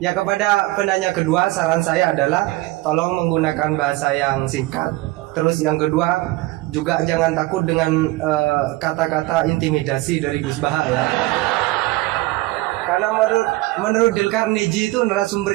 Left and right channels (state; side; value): quieter; left; 19.4 dB